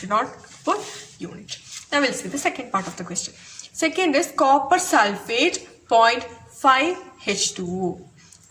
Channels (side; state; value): both; identical; correlation 1.00